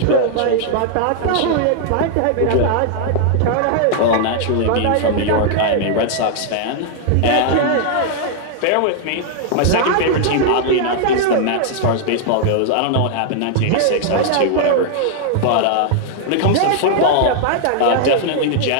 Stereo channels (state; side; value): different; both; correlation -0.01